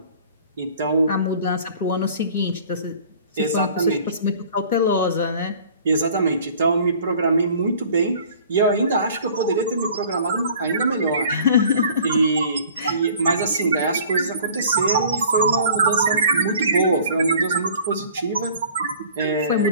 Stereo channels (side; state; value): both; inverted; correlation -0.49